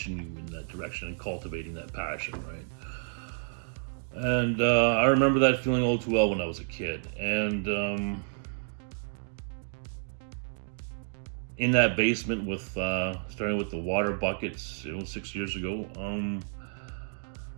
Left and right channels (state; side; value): silent; left; digital silence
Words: you in that direction and cultivating that passion, right? And I remember that feeling all too well when I was a kid. And in that basement with starting with the water buckets, 6 years ago,